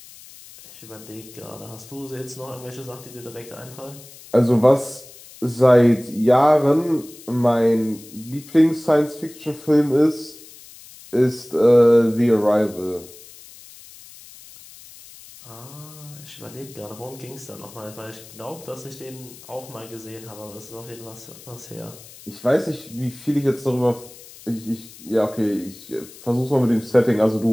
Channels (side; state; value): left; noise; hiss, 19 dB below the sound